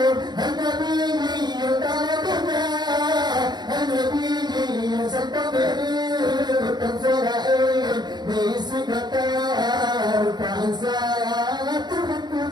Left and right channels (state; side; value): late; left; 0.20 ms